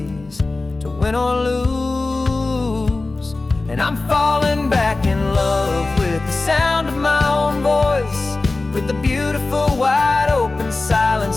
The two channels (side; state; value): right; quieter; 3.4 dB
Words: to win or lose. And I'm falling back in love with the sound of my own voice, with the beautiful wide open